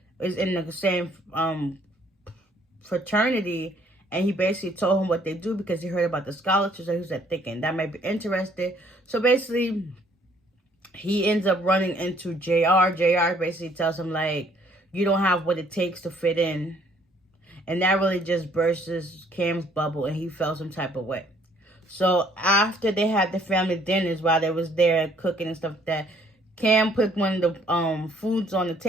is in the same fraternity, and he basically told him what they do because he heard about the scholarships. So he was thinking that might be interested. So basically, he ends up running into JR. JR basically tells him, like, you don't have what it takes to fit in. And that really just bursts Cam's bubble, and he felt some type of way. So after they had the family dinners, while they was there cooking and stuff like that, Cam put one of the foods on the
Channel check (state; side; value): normal; both; correlation 0.62